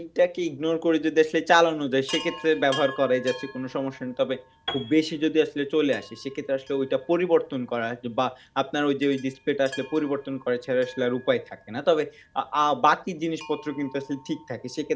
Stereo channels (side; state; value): both; identical; correlation 1.00